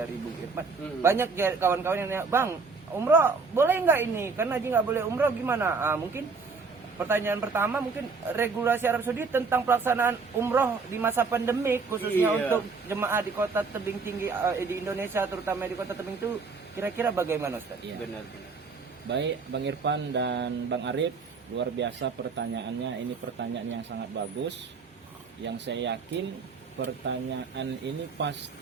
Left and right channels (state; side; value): quieter; left; 4.7 dB